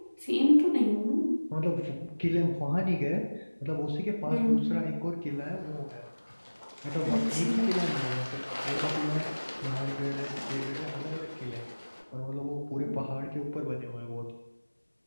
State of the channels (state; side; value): inverted; both; correlation -1.00